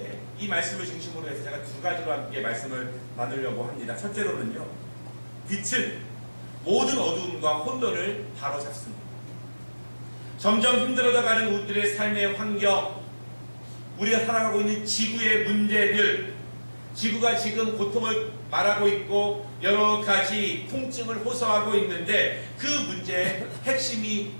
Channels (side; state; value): both; inverted; correlation -1.00